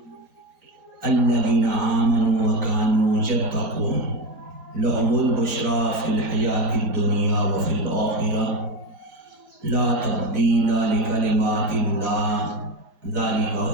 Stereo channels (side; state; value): left; late; 4.9 ms